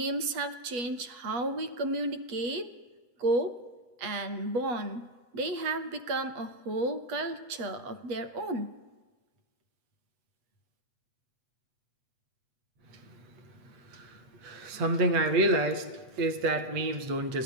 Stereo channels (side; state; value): left; late; 8.1 ms